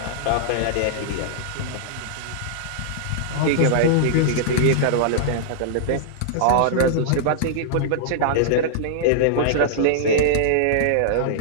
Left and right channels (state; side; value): different; both; correlation -0.02